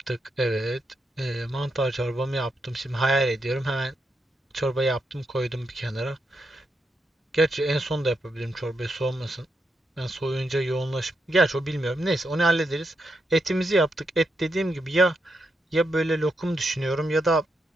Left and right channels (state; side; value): normal; both; correlation 0.83